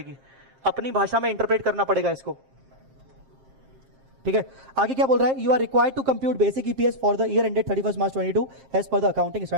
अपनी भाषा में इंटरप्रेट करना पड़ेगा इसको। ठीक है, आगे क्या बोल रहा है? You are required to compute basic EPS for the year ended 31 March 2022 as per the accounting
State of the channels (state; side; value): late; left; 7.5 ms